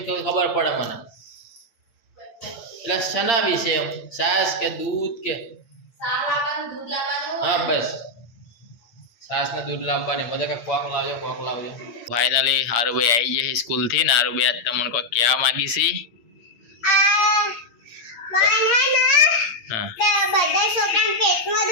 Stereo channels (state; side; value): late; right; 8.7 ms